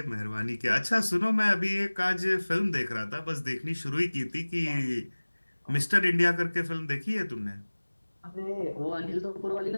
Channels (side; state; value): both; inverted; correlation -1.00